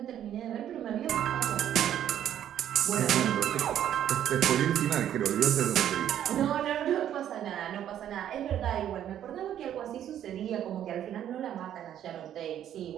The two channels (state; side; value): quieter; left; 10.6 dB